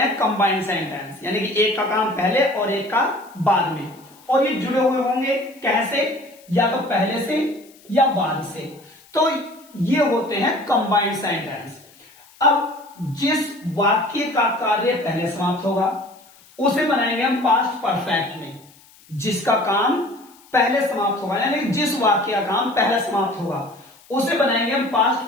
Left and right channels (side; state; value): left; noise; hiss, 27 dB below the sound